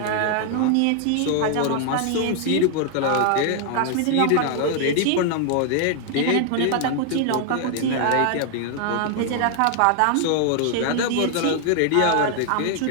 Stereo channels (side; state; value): both; different; correlation 0.00